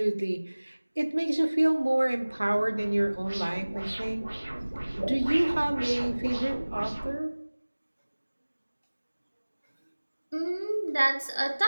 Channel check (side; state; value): both; inverted; correlation -1.00